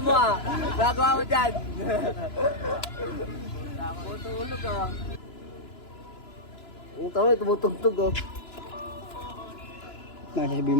mo ah. Gagawa mo dyan. Tutulog ah. Ang tama, tumutugtog oh. Sasabihin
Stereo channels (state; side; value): late; right; 2.9 ms